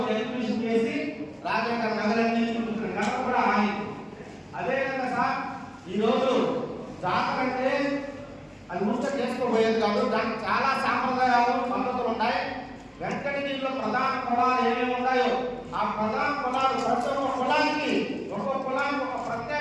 ఎగ్జిబిషన్ చేసి రాజా గారు నగరాన్ని చూపించారు. నగర కూడా ఆయన అదేవిధంగా సార్ ఈరోజు జాతర అంటే అది ముష్ట చేసుకోబోయేది కాదు, దానికి చాలా సాంప్రదాయాలు పద్ధతులు ఉన్నాయి. వెంకటగిరిలో ప్రధాన కులాలు ఏమేమి ఉన్నాయో ఆ ప్రధాన కులాలు ప్రతి ఒక్క కులానికి ఒక్కొక్క కులానికి ఒక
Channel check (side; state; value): both; identical; correlation 1.00